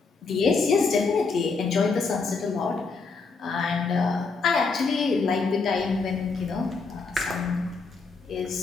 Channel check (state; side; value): quieter; right; 4.4 dB